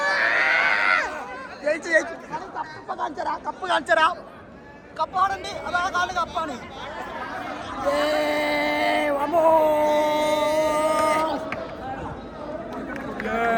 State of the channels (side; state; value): both; identical; correlation 1.00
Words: കപ്പ് കാണിച്ചരാ. കപ്പാടുണ്ട്, അതാ കാല് കപ്പാണ്.